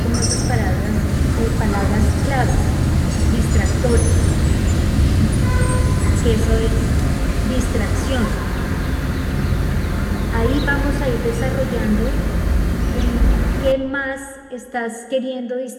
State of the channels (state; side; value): identical; both; correlation 1.00